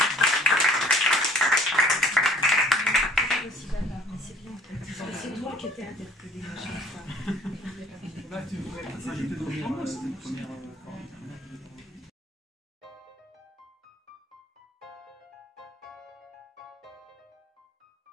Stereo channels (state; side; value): normal; both; correlation 0.53